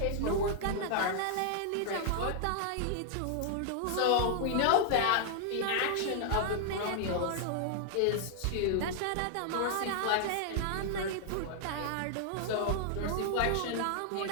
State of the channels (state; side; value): different; both; correlation -0.01